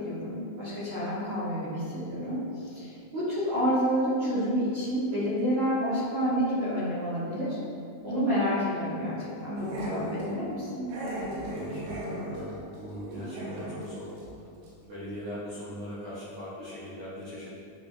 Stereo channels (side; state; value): left; late; 20 ms